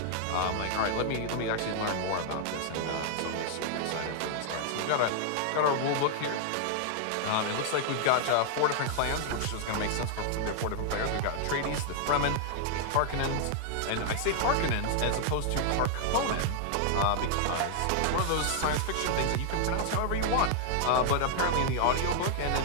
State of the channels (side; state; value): both; different; correlation 0.00